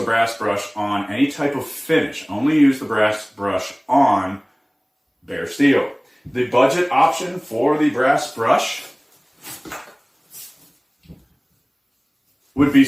brass brush on any type of finish. Only use the brass brush on bare steel. The budget option for the brass brush would be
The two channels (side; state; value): both; identical; correlation 1.00